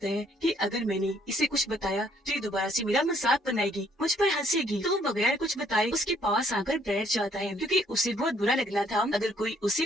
है कि अगर मैंने इसे कुछ बताया तो ये दोबारा से मेरा मजाक बनाएगी, मुझ पर हंसेगी, तो वो बगैर कुछ बताए उसके पास आकर बैठ जाता है, क्योंकि उसे बहुत बुरा लगना था अगर कोई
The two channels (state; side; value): normal; both; correlation 0.65